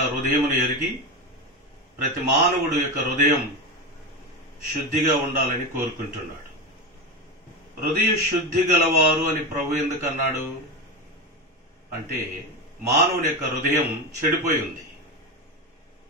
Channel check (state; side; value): normal; both; correlation 0.19